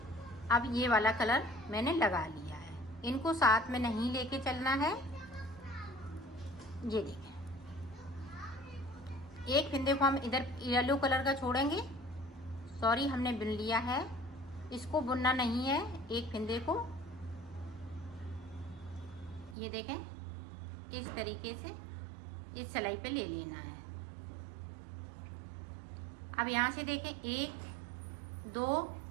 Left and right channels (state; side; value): drops out; left; at 19.6 s